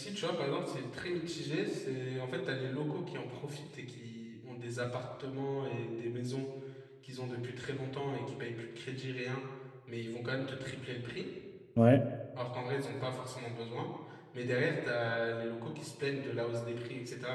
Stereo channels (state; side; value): identical; both; correlation 1.00